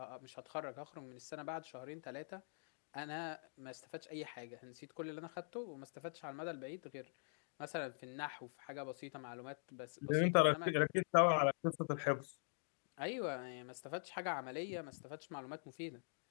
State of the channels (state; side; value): silent; right; digital silence